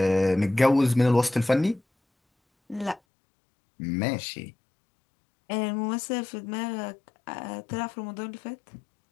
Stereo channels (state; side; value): drops out; right; at 3.0 s